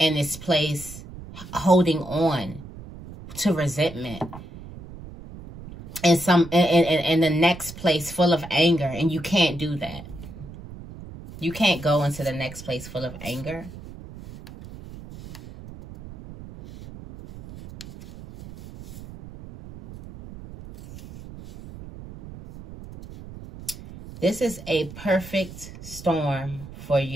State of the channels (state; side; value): noise; right; rumble, 15 dB below the sound